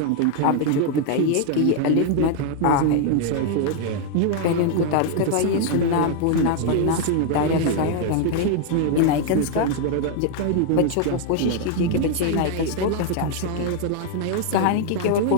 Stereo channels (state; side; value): different; both; correlation 0.00